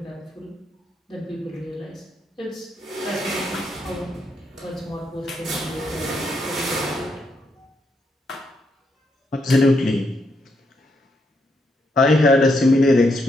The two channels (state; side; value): normal; both; correlation 0.78